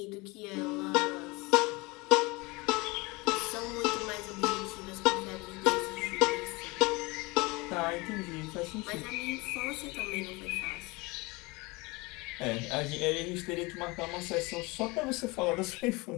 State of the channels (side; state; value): right; quieter; 24.9 dB